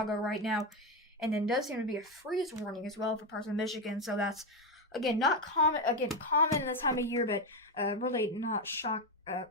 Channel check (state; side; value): normal; both; correlation 0.10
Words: right now, and then does seem to be a freeze warning as well for parts of Michigan. So that's again not common. Again, common in this time of year, but really not